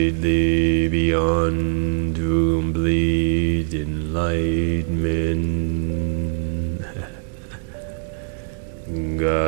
beyond to complete enlightenment.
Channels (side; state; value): left; silent; digital silence